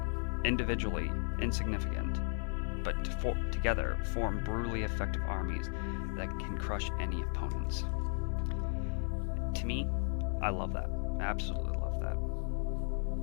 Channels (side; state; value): right; silent; 54 dB below the other